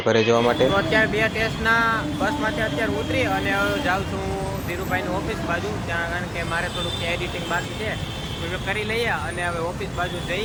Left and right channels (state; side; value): identical; both; correlation 1.00